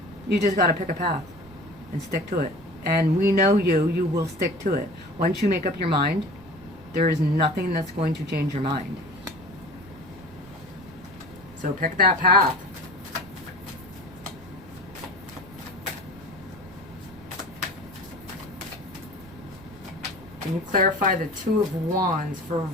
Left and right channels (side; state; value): right; noise; rumble, 21 dB below the sound